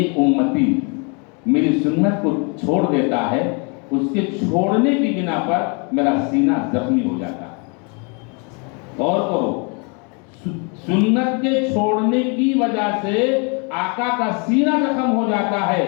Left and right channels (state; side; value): quieter; right; 34.7 dB